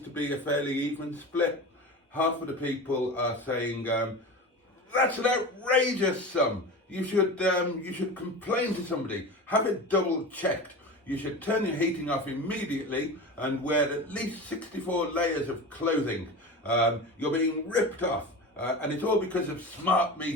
to be a fairly even split. Half of the people are saying, that's an outrageous sum. You should complain to somebody. Have it double checked. You should turn your heating off immediately and wear at least 64 layers of clothing. You're being ripped off. And it's all because of smart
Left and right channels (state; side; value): normal; both; correlation 0.29